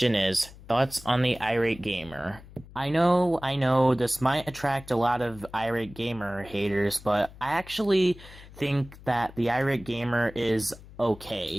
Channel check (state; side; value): noise; left; hum, 19 dB below the sound